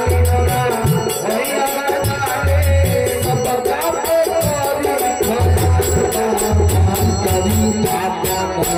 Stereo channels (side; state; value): both; identical; correlation 1.00